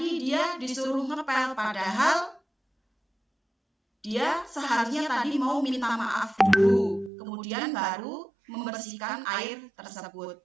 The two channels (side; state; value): left; drops out; at 7.1 s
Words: dia disuruh ngepel, padahal dia seharusnya tadi mau minta maaf dulu, kemudian baru membersihkan air tersebut.